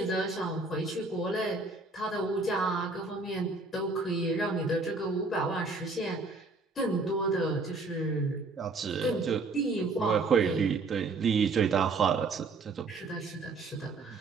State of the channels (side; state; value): left; quieter; 3.7 dB